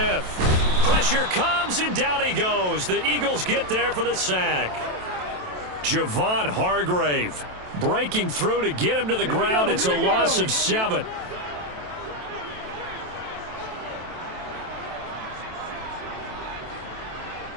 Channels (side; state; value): left; late; 27 ms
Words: Pressure comes, and down he goes. The Eagles get there for the sack. Javon Hargrave breaking through to get him to the ground. It's a loss of 7.